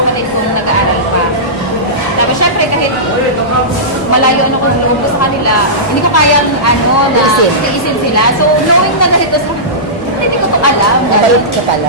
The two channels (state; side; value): normal; both; correlation -0.18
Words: kong nag-aaral pa. Tapos syempre, kahit malayo ano kung loob ko sa kanila, hindi ko kayang na iisin sila. So, knowing na kahit ko, hindi ko ito alam. Nabalot ka